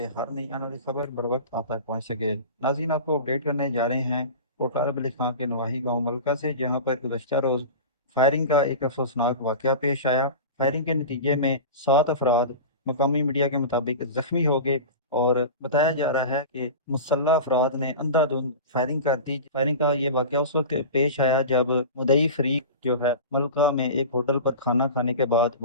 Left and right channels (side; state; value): both; inverted; correlation -0.31